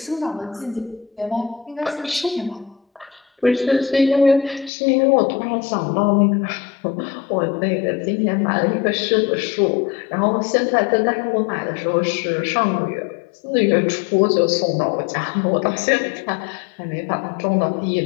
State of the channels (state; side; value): drops out; right; at 4.7 s